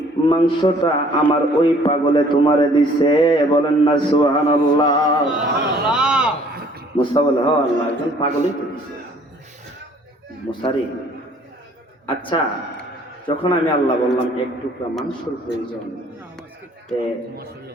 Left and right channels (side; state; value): both; normal; correlation 0.57